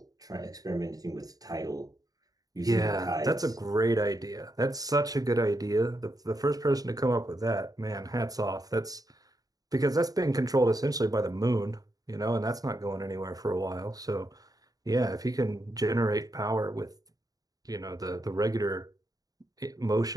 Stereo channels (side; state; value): left; late; 0.18 ms